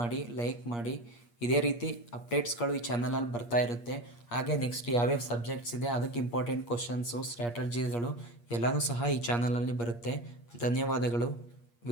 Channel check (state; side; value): late; right; 8.5 ms